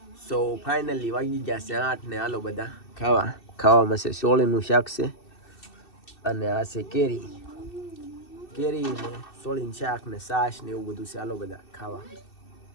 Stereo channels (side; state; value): right; late; 2.7 ms